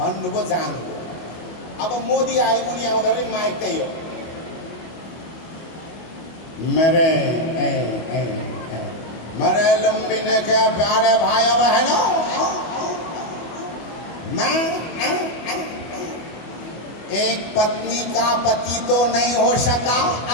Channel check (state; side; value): late; right; 25 ms